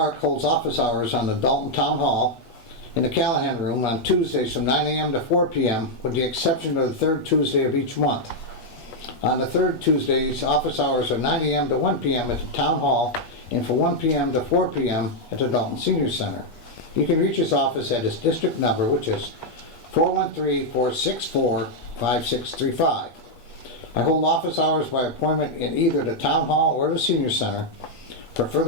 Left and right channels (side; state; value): right; late; 8.4 ms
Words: holds office hours on the Dalton Town Hall in the Callahan Room on Tuesdays from 9 a.m. to 4 p.m., with the exception of the third Tuesday of each month. On the third Tuesdays, office hours are 9 a.m. to 1 p.m. at the Town Hall and from 1 p.m. to 4 p.m. at the Dalton Senior Center. You can reach his office at his district number, which is 413-464-5635. I hold office hours by appointment in either the Town Hall or the Senior Center. For